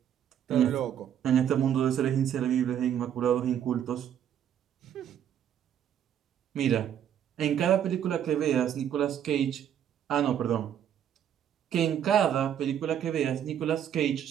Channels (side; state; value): left; quieter; 9.7 dB